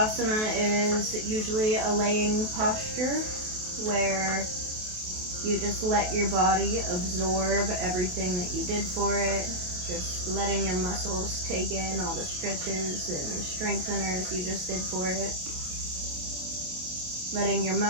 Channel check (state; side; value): late; left; 28 ms